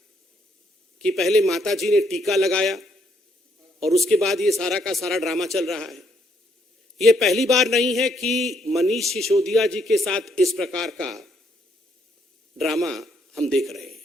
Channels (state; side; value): normal; both; correlation 0.72